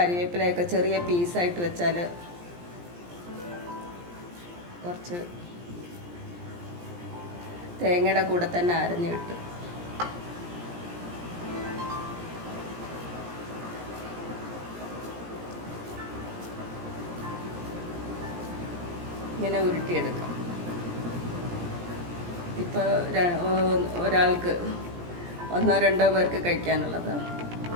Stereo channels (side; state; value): left; late; 17 ms